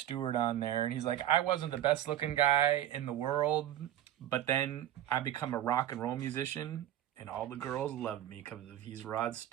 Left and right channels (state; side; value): quieter; left; 12.1 dB